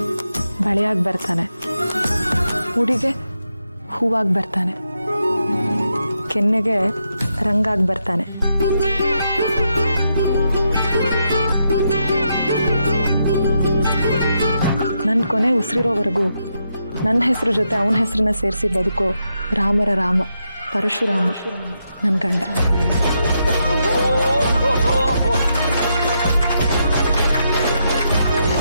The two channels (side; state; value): both; inverted; correlation -0.82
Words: ಬಳೆಯಾಗಿ ಬರ್ತಾನೆ, ಉಡಿಗೆ ಹೂವಾಗಿ ಬರ್ತಾನೆ, ಕೆನ್ನೆಗೆ ರಂಗಾಗಿ ಬರ್ತಾನೆ. ನನ್ನ ಕೊನೆ ಉಸಿರಿರೋವರೆಗೂ ನನ್ನ ಹೆಸರು ಜೊತೆ ಅವನ ಹೆಸರನ್ನ ಸೇರಿಸಿ ಬದುಕೋ ರಾಮರ ರಾಮ ಪರಶುರಾಮ ನನ್ನ ಗಂಡ.